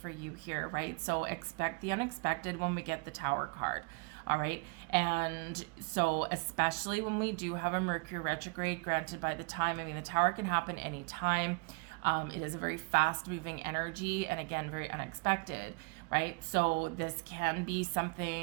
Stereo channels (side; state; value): left; quieter; 31.6 dB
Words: you here, right? So expect the unexpected when we get the Tower card. All right. And so especially when we do have a Mercury retrograde, granted by the time, I mean, the Tower can happen anytime. It is a very fast moving energy, and again, very unexpected, right? So this can be